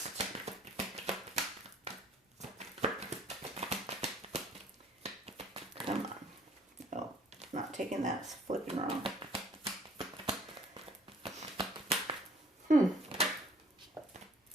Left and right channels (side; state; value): both; normal; correlation 0.57